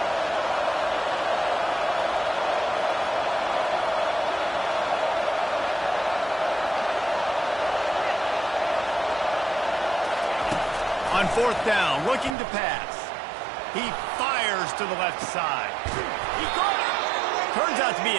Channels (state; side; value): drops out; left; at 12.4 s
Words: On fourth down, looking to pass. He fires to the left side. He got it. Turns out to be